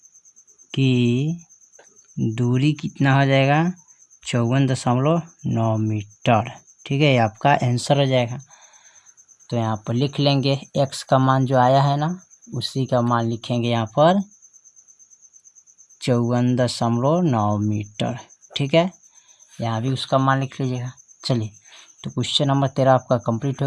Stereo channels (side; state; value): both; identical; correlation 1.00